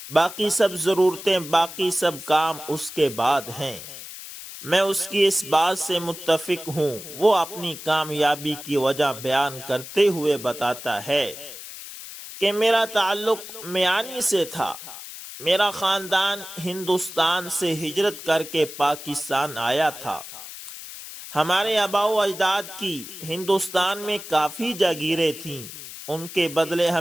باقی سب ضرورتیں باقی سب کام اس کے بعد ہیں۔ میں اس کی اس بات سے متفق ہوں۔ وہ اپنی کامیابی کی وجہ بیان کرتے ہوئے بتاتا ہے کہ میرا تعلق میانی سے تھا۔ میرا خاندان ہندوستان سے ہجرت کر کے پاکستان آیا تھا۔ ہمارے آباء و اجداد کی ہندوستان میں کافی جاگیریں تھیں، ان کے بدلے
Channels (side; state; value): left; noise; hiss, 12 dB below the sound